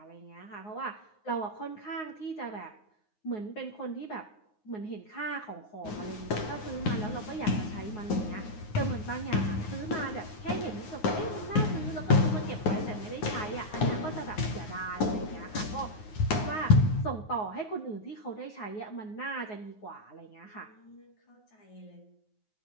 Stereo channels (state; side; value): late; right; 9.5 ms